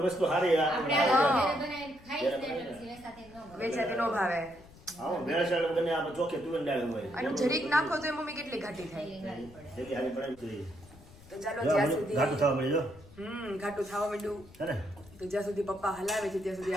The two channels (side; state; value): left; noise; rumble, 22 dB below the sound